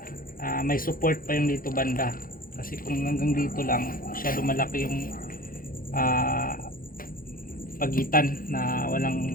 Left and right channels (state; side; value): late; right; 0.41 ms